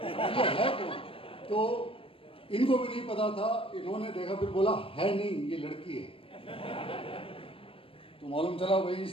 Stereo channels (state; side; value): late; right; 0.26 ms